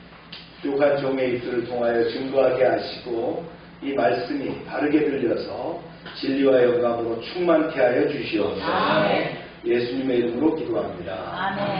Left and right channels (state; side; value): identical; both; correlation 1.00